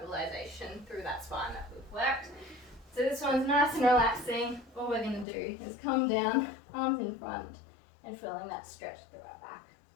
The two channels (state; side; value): drops out; right; at 5.2 s